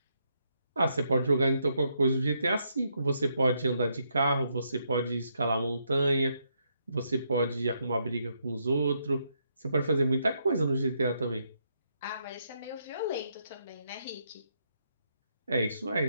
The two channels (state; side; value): inverted; both; correlation -0.77